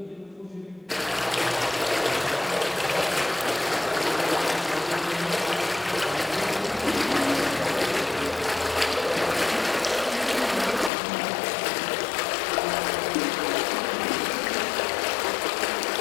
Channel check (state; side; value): drops out; right; at 10.9 s